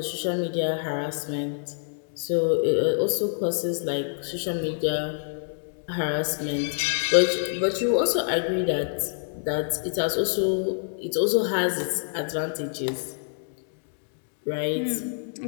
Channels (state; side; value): silent; right; digital silence